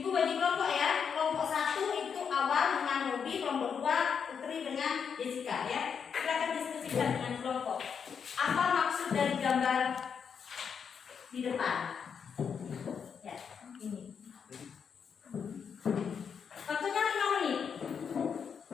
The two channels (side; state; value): right; quieter; 6.8 dB